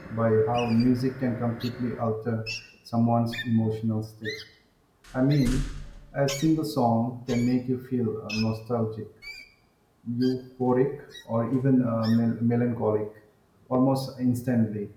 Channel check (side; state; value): both; identical; correlation 1.00